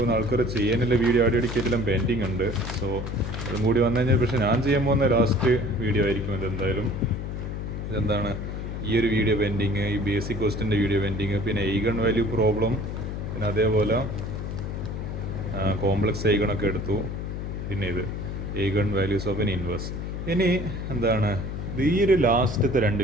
ആൾക്കാർ ചെയ്യാനുള്ള വീഡിയോ അടിക്കടിക്കെല്ലാം പെൻഡിങ് ഉണ്ട്. സോ അതും കൂടി വന്നു കഴിഞ്ഞാൽ പക്ഷേ ഞാൻ ചെയ്യാൻ പോകുന്ന ലാസ്റ്റ് വീഡിയോ ആയിരിക്കും ഇതെന്തായാലും. ഇതെന്താണ് ഈ ഒരു വീഡിയോ പെൻഡിങ്, ഈ ബേസിക് ക്വസ്റ്റിൻ്റെ വീഡിയോ പെൻഡിങ്, പിന്നെ ഐഗൺ വാല്യൂ പ്രോബ്ലം, പിന്നെ അതേപോലെ കോംപ്ലക്സ് ഐഗണൊക്കെ എടുത്തു, പിന്നെ ഇത് eigen values of N inverse. ഇനി എന്താണ് ഈ ഒരു ലാസ്റ്റത്തെ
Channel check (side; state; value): left; noise; hum, 5 dB below the sound